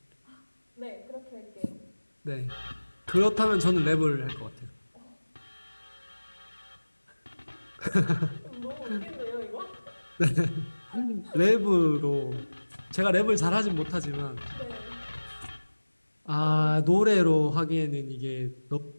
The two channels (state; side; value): inverted; both; correlation -1.00